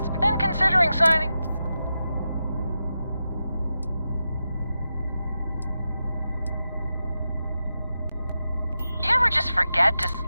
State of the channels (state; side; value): inverted; both; correlation -0.90